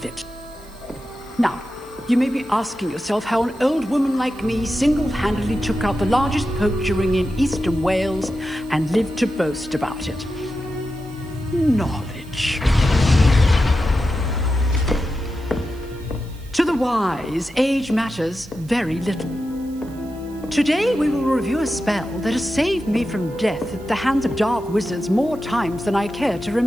it. Now, you may be asking yourself how an old woman like me single-handedly took out the largest poacher ring in eastern Wales and lived to boast about it. Knowledge. To the wise, age matters very little. Today we will review a spell that has saved me from death at the hands of dark wizards more times than I care to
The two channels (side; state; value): right; noise; hiss, 25 dB below the sound